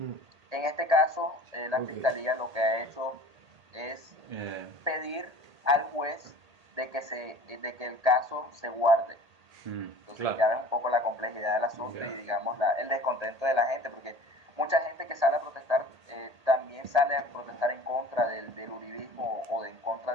En este caso, la Ok. fiscalía lo que ha hecho es Eh, pedir al juez de que el caso se guarde. Entonces Claro. ya ves un poco la complejidad del asunto y digamos el descontento de la gente, porque mucha gente que sale a protestar también sale a protestar en contra del uribismo o en contra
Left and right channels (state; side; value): late; left; 1.8 ms